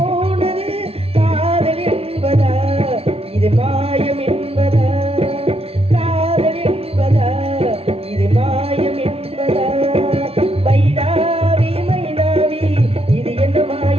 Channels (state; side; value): late; left; 0.29 ms